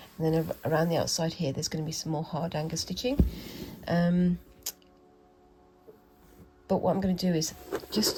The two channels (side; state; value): both; identical; correlation 1.00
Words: and then around the outside here there's going to be some more hard angle stitching. But what I'm going to do is,